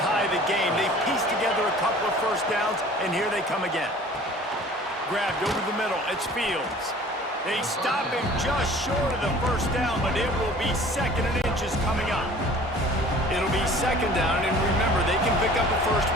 the game. They pieced together a couple of first downs, and here they come again. Grabbed over the middle, it's Fields. They stop him just short of the first down, but it will be 2nd and inches coming up. It'll be 2nd down, and remember, they can pick up a first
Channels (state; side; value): normal; both; correlation 0.48